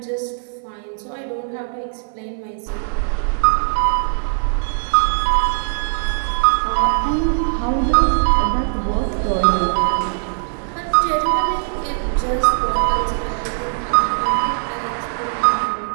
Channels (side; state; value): left; silent; 56 dB below the other